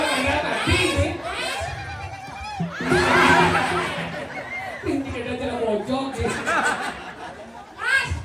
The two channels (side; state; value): both; identical; correlation 1.00